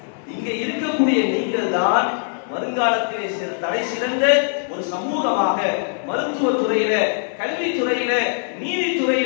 இங்க இருக்கக்கூடிய நீங்கள் தான் வருங்காலத்திலே தலை சிறந்த ஒரு சமூகமாக மருத்துவத்துறையில, கல்வித்துறையில,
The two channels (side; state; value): right; silent; 57 dB below the other